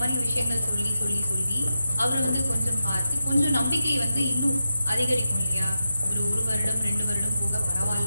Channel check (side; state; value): both; inverted; correlation -0.90